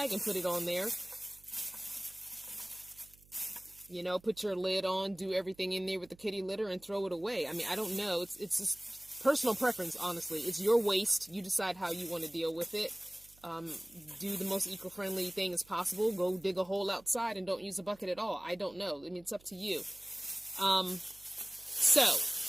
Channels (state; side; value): noise; right; hum, 27 dB below the sound